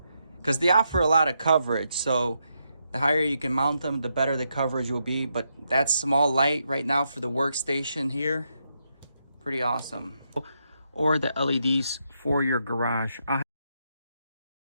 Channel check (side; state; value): both; inverted; correlation -0.81